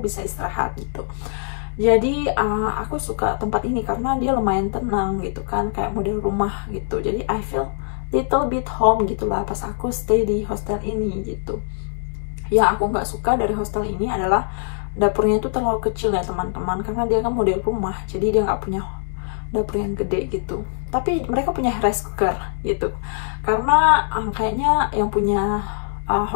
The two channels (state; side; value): silent; right; digital silence